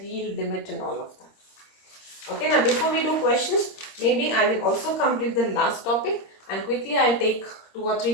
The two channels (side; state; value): right; late; 26 ms